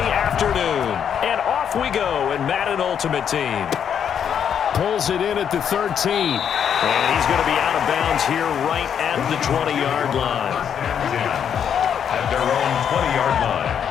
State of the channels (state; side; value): quieter; right; 8.3 dB